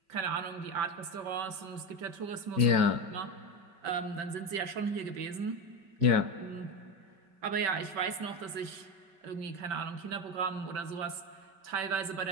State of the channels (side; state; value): left; late; 5.2 ms